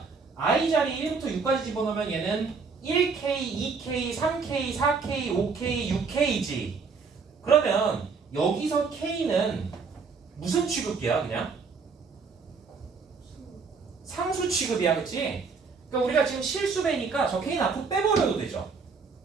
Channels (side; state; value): left; quieter; 5.0 dB